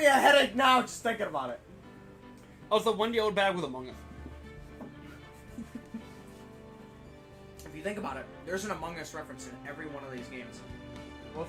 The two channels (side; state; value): both; identical; correlation 1.00